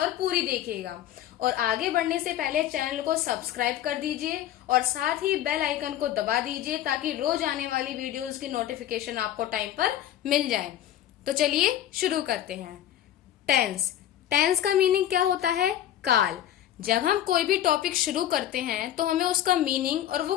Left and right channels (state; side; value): quieter; right; 12.0 dB